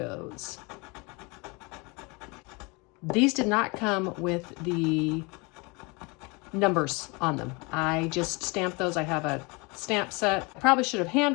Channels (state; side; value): quieter; right; 28.3 dB